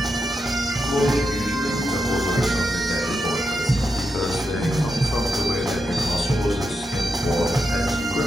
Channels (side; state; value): both; normal; correlation 0.86